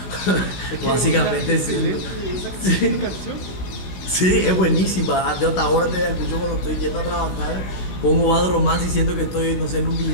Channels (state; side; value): late; right; 16 ms